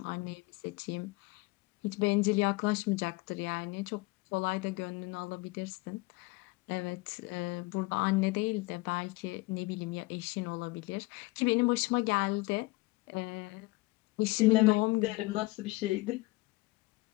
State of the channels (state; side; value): quieter; right; 22.7 dB